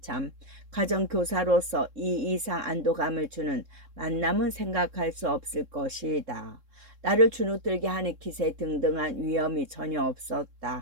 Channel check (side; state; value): left; late; 3.7 ms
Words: 가정교사로서 이 이상 안도감을 주는 만남은 생각할 수 없을 것이다. 나를 주눅들게 하는 기세 등등한 위험이 전혀